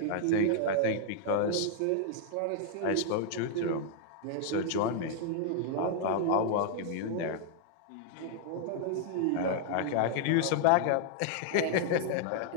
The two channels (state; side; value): different; both; correlation -0.01